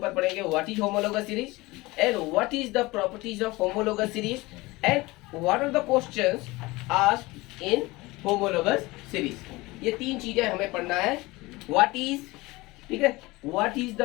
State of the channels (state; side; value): quieter; right; 21.5 dB